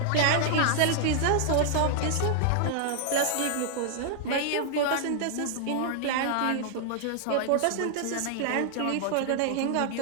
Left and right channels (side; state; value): both; different; correlation -0.01